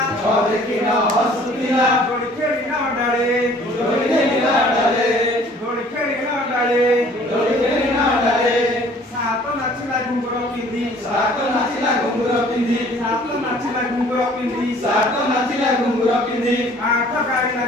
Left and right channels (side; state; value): both; normal; correlation 0.54